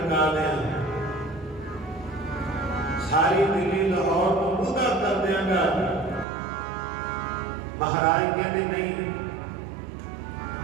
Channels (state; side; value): drops out; left; at 6.2 s